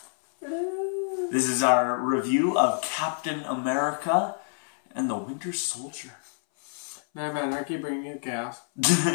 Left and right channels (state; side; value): silent; right; 60 dB below the other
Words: This is our review of Captain America and the Winter Soldier. Nah man, I keep bringing you gas.